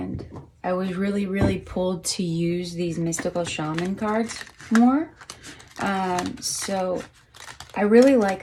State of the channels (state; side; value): identical; both; correlation 1.00